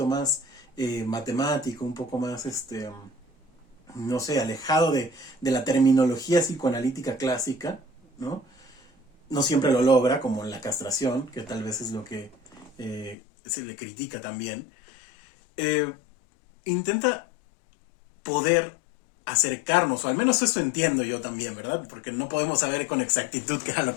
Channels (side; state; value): right; drops out; at 13.2 s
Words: más matemático, un poco más, no sé, alejado de la terminología psicoanalítica clásica, ¿no? No siempre lo logra, como en la castración, que tal vez es lo que se le critica también. Intenta poder acercarnos, o al menos eso entiendo yo también, ¿verdad? Porque no podemos saber con exactitud qué era lo